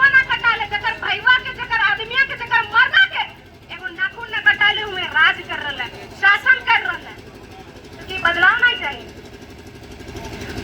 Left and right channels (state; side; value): identical; both; correlation 1.00